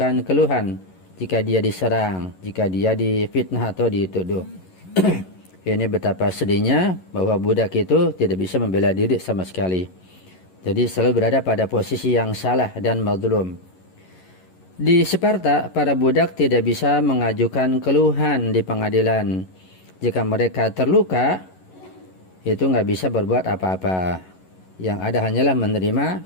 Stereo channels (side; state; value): right; late; 11 ms